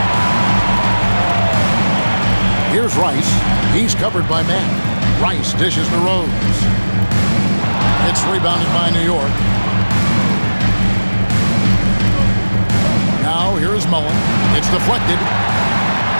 Here's Rice. He's covered by Mack. Rice dishes to Rose. It's rebounded by New York. Now here's Mullen. It's deflected.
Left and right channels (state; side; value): inverted; both; correlation -1.00